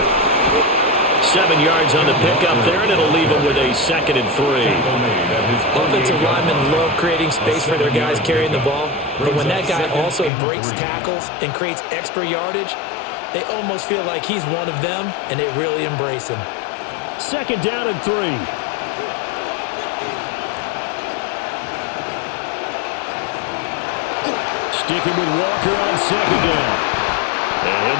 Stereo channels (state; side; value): drops out; right; at 10.3 s